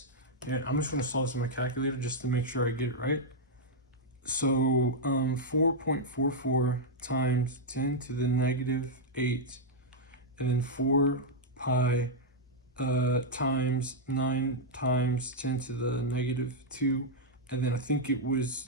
And I'm just going to solve this in my calculator just to make sure I get it right. So 4.44 times 10 to the negative 8. And then 4 pi times 9 times 10 to the negative 2. And then I think it was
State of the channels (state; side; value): normal; both; correlation -0.03